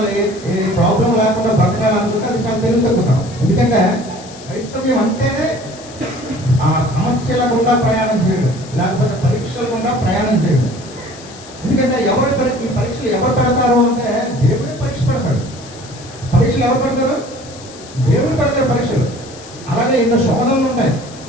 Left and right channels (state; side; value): noise; left; hiss, 19 dB below the sound